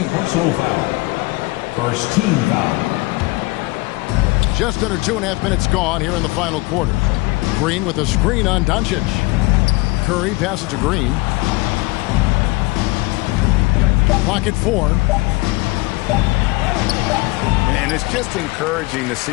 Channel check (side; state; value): right; quieter; 23.3 dB